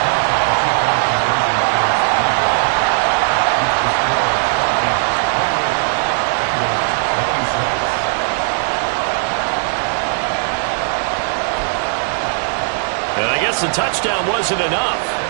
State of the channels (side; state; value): left; silent; digital silence